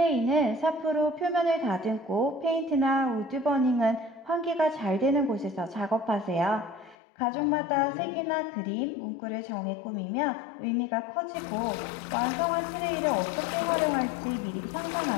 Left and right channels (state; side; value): drops out; right; at 7.0 s